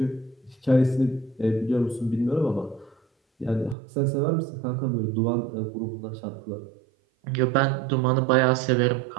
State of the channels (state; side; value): drops out; left; at 3.8 s